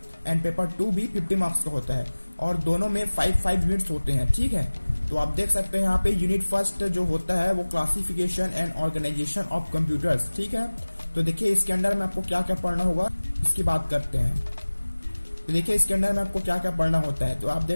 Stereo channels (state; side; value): inverted; both; correlation -1.00